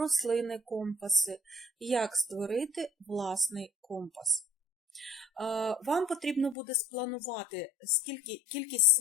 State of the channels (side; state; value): right; drops out; at 6.6 s